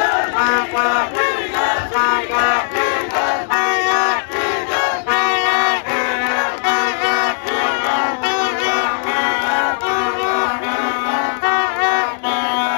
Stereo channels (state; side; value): silent; right; digital silence